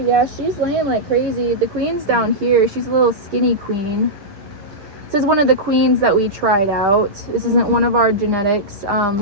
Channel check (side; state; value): left; late; 9.7 ms